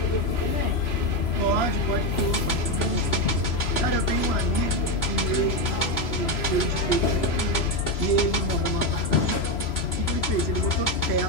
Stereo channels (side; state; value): right; late; 3.0 ms